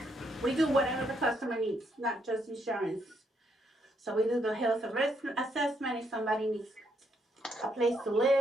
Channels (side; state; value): both; normal; correlation 0.75